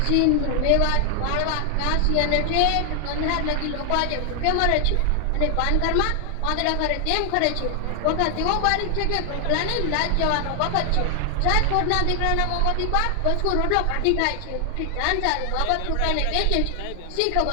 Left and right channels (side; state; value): both; different; correlation 0.00